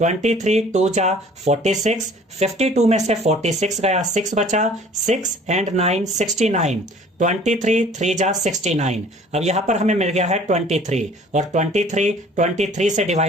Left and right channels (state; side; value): normal; both; correlation 0.51